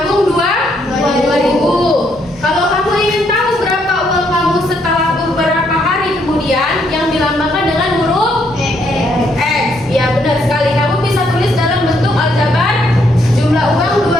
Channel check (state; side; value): normal; both; correlation 0.72